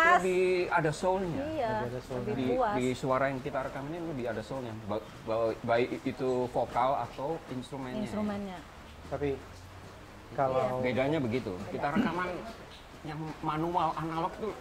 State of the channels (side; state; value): both; identical; correlation 1.00